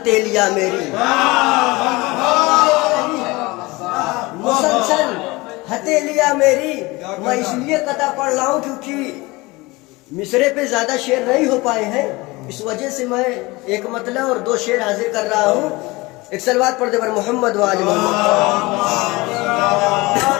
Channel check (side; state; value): right; quieter; 22.7 dB